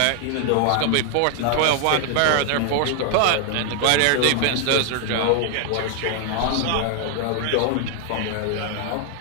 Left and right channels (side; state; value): both; different; correlation 0.00